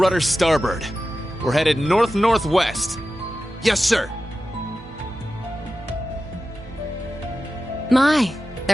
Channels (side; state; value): both; normal; correlation 0.93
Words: starboard. We're headed north-northwest. Yes, sir. My,